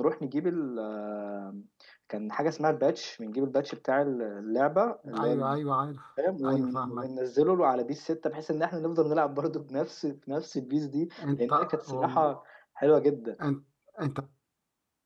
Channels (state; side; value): identical; both; correlation 1.00